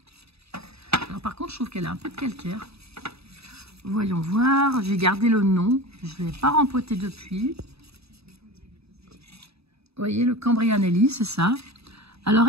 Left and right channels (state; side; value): late; left; 0.78 ms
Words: Alors par contre, je trouve qu'elle a un peu de calcaire. Voyons voir. J'ai gardé le nom. Je ne l'ai pas rempoté depuis. Vous voyez, le Cambria Nelly, c'est ça. Alors